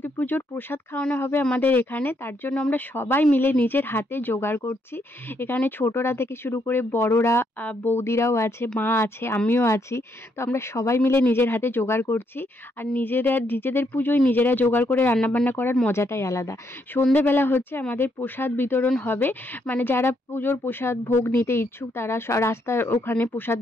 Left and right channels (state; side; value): normal; both; correlation 0.75